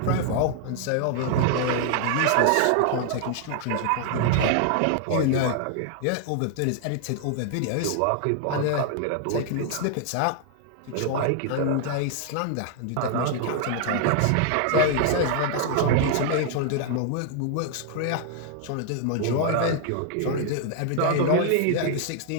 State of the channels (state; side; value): different; both; correlation 0.00